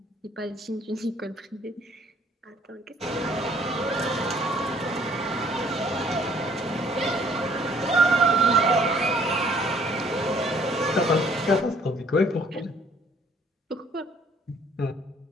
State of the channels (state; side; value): normal; both; correlation 0.61